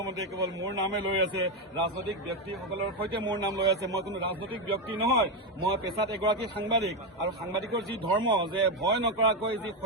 কেৱল মোৰ নামে লৈ আছে, ৰাজনৈতিক ব্যক্তিসকলৰ সৈতে মোৰ নাম লৈ আছে। মই কোনো ৰাজনৈতিক ব্যক্তি নহয়, মই পেছাত এগৰাকী সাংবাদিক আৰু সাংবাদিকৰ যি ধৰ্ম যে ভয় নকৰাকৈ যি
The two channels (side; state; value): both; normal; correlation 0.08